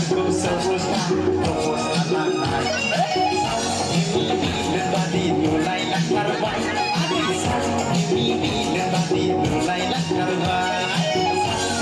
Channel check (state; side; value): identical; both; correlation 1.00